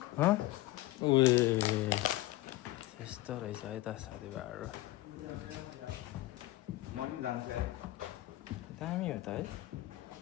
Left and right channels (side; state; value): right; quieter; 17.9 dB